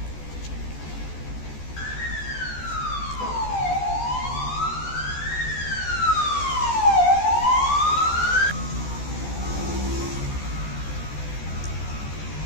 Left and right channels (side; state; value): right; late; 14 ms